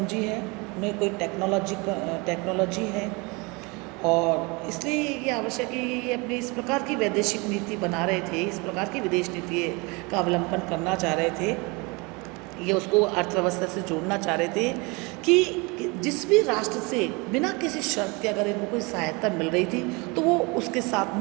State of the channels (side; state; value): left; quieter; 27.6 dB